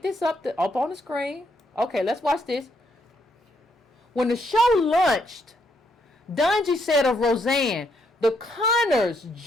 this up on the screen. Okay, let's watch this. When the show launched, Dungy said of Roseanne, the Connors'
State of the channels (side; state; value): both; normal; correlation 0.75